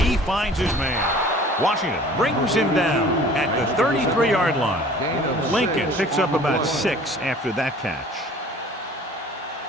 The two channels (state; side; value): normal; both; correlation 0.48